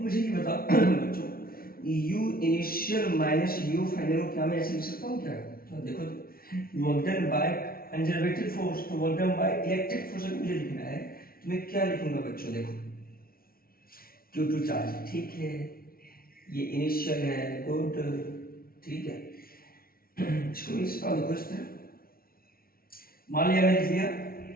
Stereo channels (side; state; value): right; late; 0.43 ms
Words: मुझे ये बताओ बच्चों, u initial minus u final को क्या मैं ऐसे लिख सकता हूँ क्या? तो देखो, work done by conservative force, तो work done by electric force मुझे लिखना है, तो मैं क्या लिखूंगा बच्चों? देखो, Q2 चार्ज, ठीक है, ये इनिशियल है, गुड, ठीक है। इसको इसका देखो इस तरह, मान लिया मैंने लिख लिया